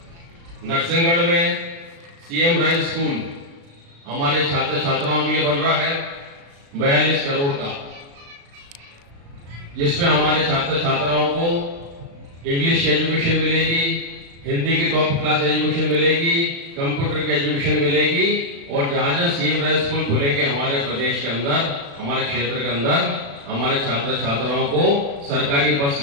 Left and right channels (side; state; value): left; late; 36 ms